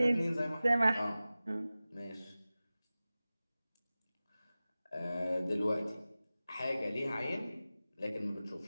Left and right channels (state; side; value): inverted; both; correlation -0.96